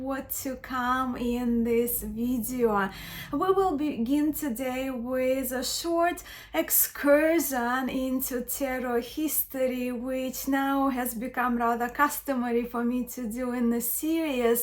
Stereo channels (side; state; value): both; identical; correlation 1.00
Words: to come in this video. We will begin today with a short excursion into tarot history, which now has become rather customary for me to do in the